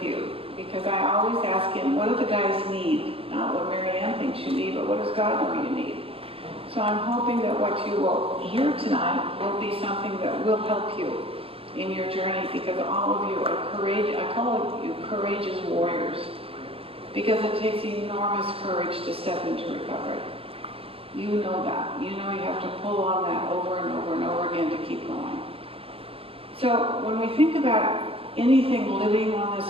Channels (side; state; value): left; late; 0.27 ms